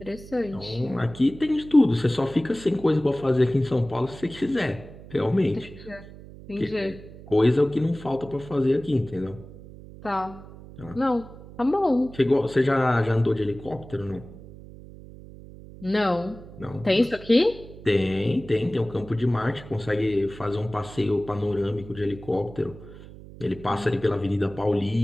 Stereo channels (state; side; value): noise; right; hum, 17 dB below the sound